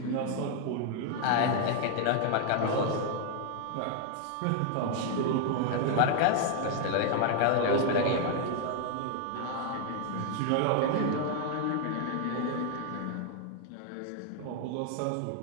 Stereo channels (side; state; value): both; different; correlation 0.00